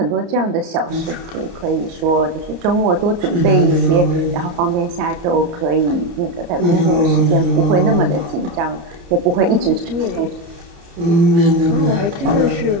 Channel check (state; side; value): late; left; 30 ms